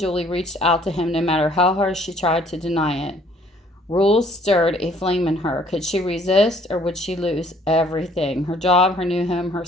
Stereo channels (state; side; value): normal; both; correlation 0.60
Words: reached out to him no matter how hard she tried to deny it. Rules stirred a flame in her. Could she resist, or would she lose everything? Her job, her new home,